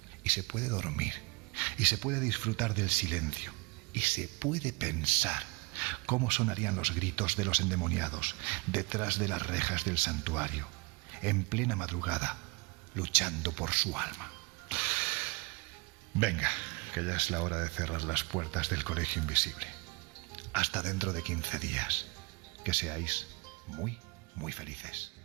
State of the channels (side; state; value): left; quieter; 26.8 dB